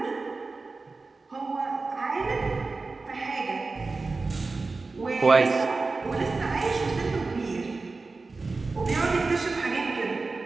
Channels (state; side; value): quieter; left; 3.8 dB